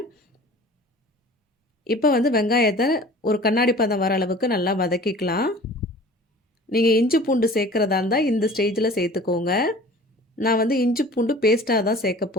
இப்போ வந்து வெங்காயத்தை ஒரு கண்ணாடி பதம் வர அளவுக்கு நல்லா வதக்கிக்கலாம். நீங்கள் இஞ்சி பூண்டு சேர்க்குறதா இருந்தால் இந்த ஸ்டேஜில் சேர்த்துக்கோங்க. நான் வந்து இஞ்சி பூண்டு பேஸ்ட்டாக தான் சேர்க்க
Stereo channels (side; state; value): both; normal; correlation 0.44